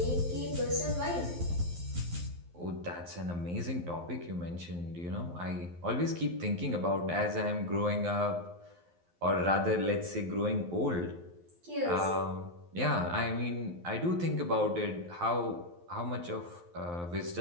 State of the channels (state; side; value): late; left; 11 ms